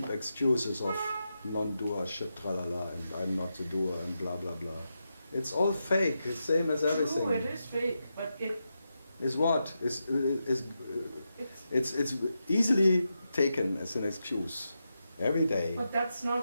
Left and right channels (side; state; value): both; inverted; correlation -0.87